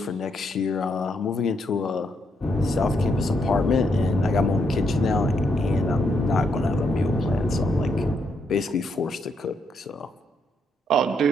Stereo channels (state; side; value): normal; both; correlation 0.77